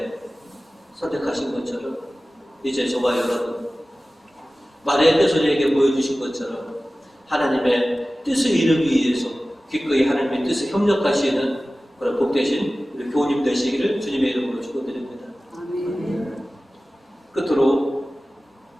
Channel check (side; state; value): both; normal; correlation 0.96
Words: 선택하신 것처럼 이제 저와 여러분 마리아께서 우리에게 보여주신 것처럼 하나님의 뜻을 이루기 위해서 기꺼이 하나님의 뜻에 협력하시는 그런 복되신 우리 교우님 되시기를 주님의 이름으로 축원드립니다. 끝으로